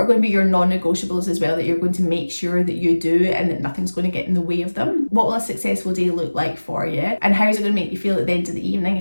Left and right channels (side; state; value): both; inverted; correlation -1.00